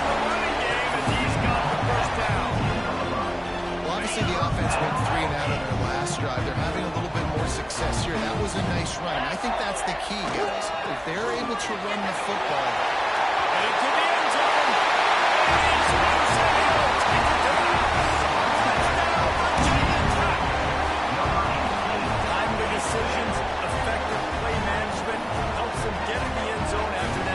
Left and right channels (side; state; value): both; identical; correlation 1.00